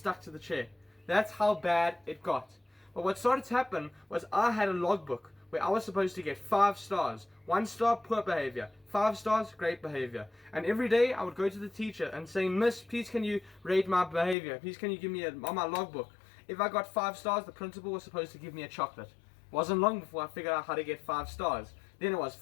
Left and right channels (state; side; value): drops out; right; at 14.4 s